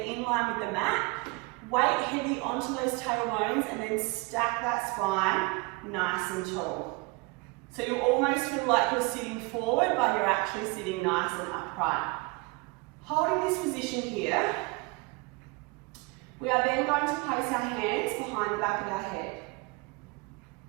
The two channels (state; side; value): quieter; left; 26.2 dB